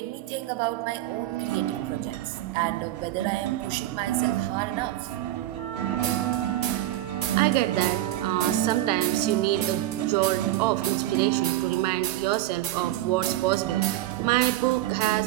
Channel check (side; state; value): left; quieter; 14.6 dB